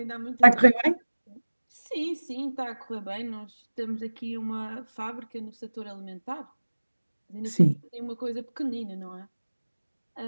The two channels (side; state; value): both; inverted; correlation -1.00